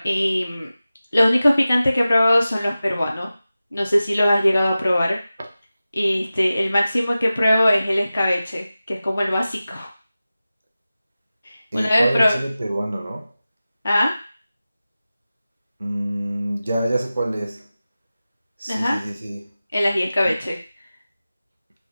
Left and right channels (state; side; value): inverted; both; correlation -0.95